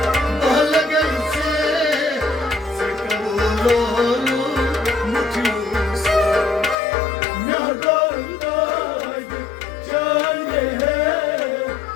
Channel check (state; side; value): drops out; right; at 6.8 s